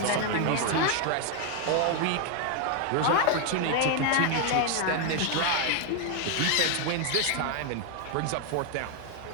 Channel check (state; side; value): different; both; correlation 0.01